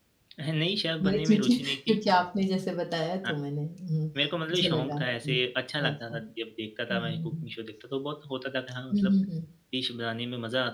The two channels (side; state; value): both; identical; correlation 1.00